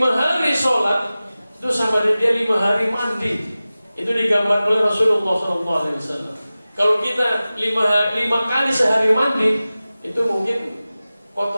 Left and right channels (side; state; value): both; inverted; correlation -0.96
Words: hari sholat, itu sama dia 5 hari mandi. Itu digambarkan oleh Rasulullah SAW. Kalau kita 5 kali sehari mandi, itu mungkin